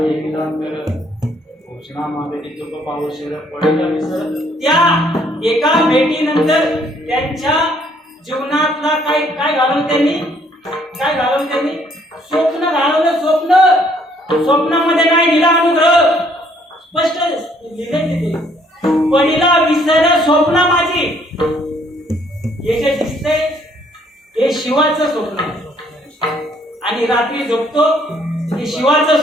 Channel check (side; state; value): both; normal; correlation 0.65